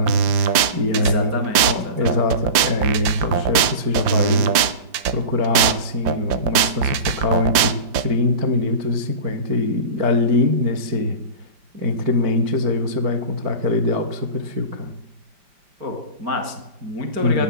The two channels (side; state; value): left; late; 5.0 ms